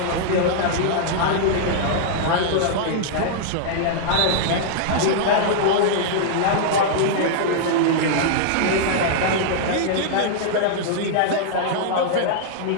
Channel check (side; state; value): both; different; correlation -0.01